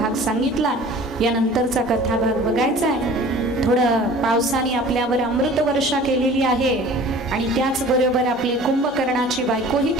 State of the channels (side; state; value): both; normal; correlation 0.45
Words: सांगितला. यानंतरचा कथाभाग बघायचा आहे. थोडं पावसाने आपल्यावर अमृत वर्षा केलेली आहे आणि त्याचबरोबर आपली कुंभकर्णाची बायकोही